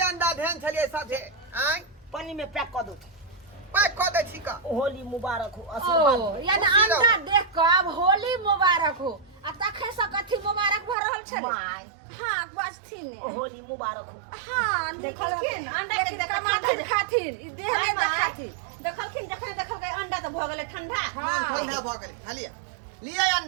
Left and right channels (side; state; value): left; drops out; at 11.0 s